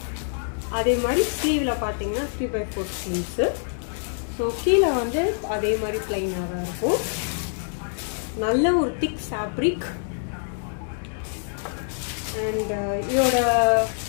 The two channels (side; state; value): right; silent; digital silence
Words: அதே மாதிரி ஸ்லீவில் பார்த்தீங்கன்னா 3/4 ஸ்லீவ்ஸு. ஸோ கீழே வந்து அதே மாதிரி பிளைனாக தான் இருக்கும். நல்ல ஒரு திக் ஃபேப்ரிக். அண்ட் இதோட